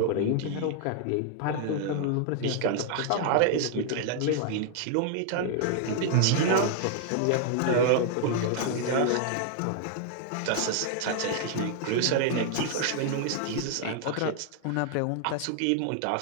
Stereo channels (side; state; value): both; different; correlation 0.00